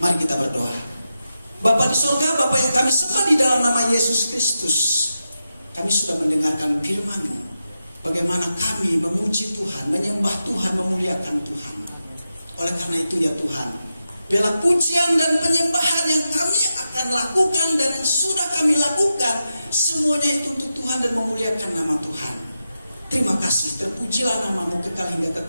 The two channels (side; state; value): both; inverted; correlation -0.89